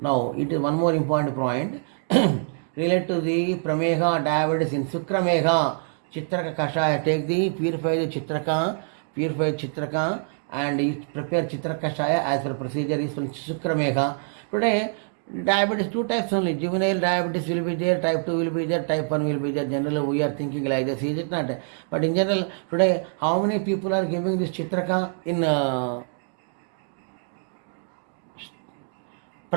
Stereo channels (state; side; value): silent; left; digital silence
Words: it is one more important point. Relate to the prameha diabetes in sukrameha, Chitraka kashaya. Take the purified Chitraka, and prepare Chitraka kashaya as per procedure is from sukrameha. Today, diabetes, two types only. Juvenile diabetes will be there, type 2 will be there, type 1 will be there. Generally, we are thinking like this, is it not? But in general, today, how many people are giving this Chitraka in